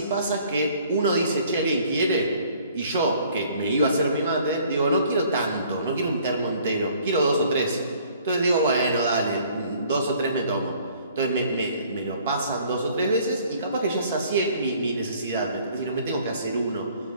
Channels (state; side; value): inverted; both; correlation -0.58